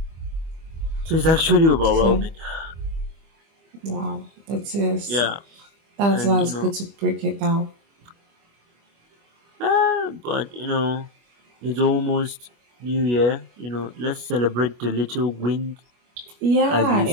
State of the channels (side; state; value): left; late; 25 ms